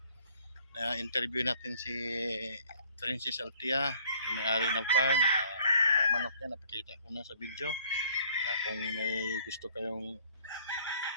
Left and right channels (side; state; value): both; inverted; correlation -0.59